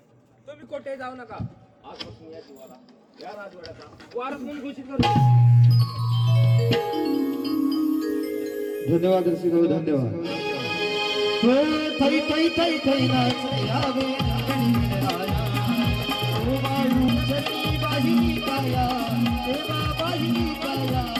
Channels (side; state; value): both; identical; correlation 1.00